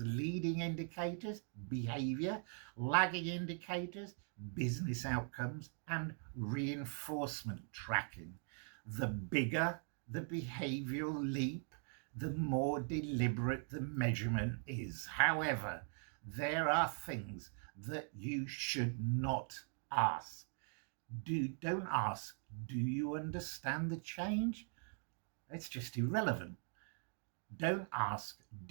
leading indicators, behavior, lagging indicators, business outcomes, and reinforcement tracking. The bigger the behavioral leap, the more deliberate the measurement is. However, there are things that you should not ask. Don't ask, do you understand the change? It's just irrelevant. Don't ask,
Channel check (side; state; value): left; silent; 50 dB below the other